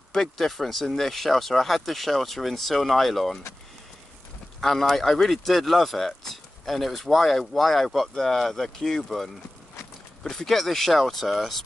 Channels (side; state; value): both; normal; correlation 0.96